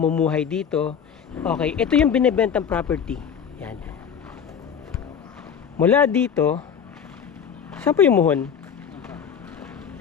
dito. Okay, ito yung binebentang property. Yan. Mula dito, saan po yung muhon?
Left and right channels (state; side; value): quieter; right; 7.5 dB